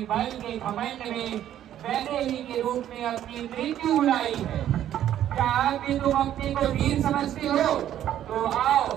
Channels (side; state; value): left; quieter; 11.4 dB